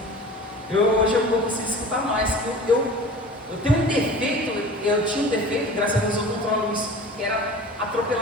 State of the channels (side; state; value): both; normal; correlation 0.39